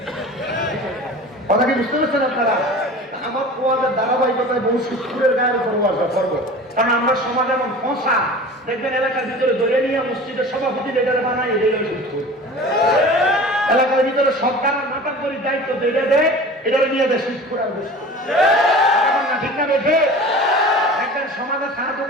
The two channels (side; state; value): both; normal; correlation 0.38